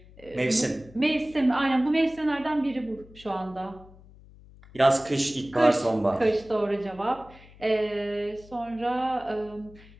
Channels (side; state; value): left; noise; hum, 23 dB below the sound